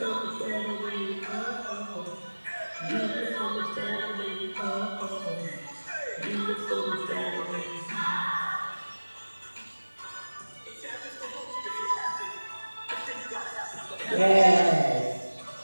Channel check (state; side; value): inverted; both; correlation -1.00